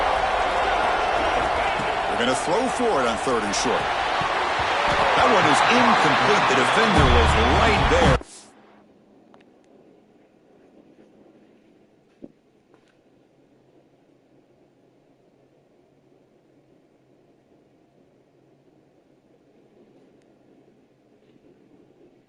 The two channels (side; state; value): both; identical; correlation 1.00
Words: Going to throw for it on 3rd and short. That one is incomplete. The defender was right there.